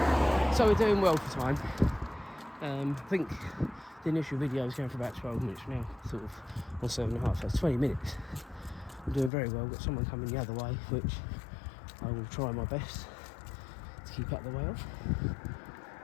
So we're doing well for time. I think the initial video was going for about 12 minutes, now sort of on 7.5, so it's 20 minutes. I'm doing very well. Got someone coming the other way, which I will try my best to keep out the way of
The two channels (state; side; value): drops out; right; at 9.3 s